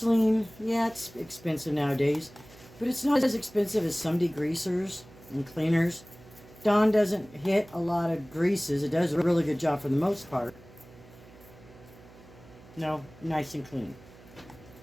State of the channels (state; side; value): noise; right; hum, 22 dB below the sound